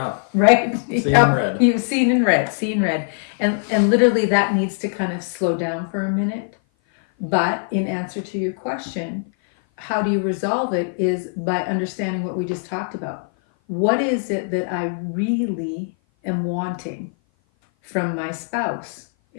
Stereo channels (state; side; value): silent; right; 56 dB below the other